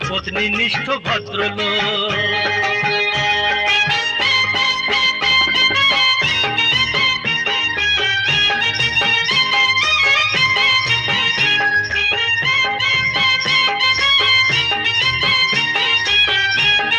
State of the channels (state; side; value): identical; both; correlation 1.00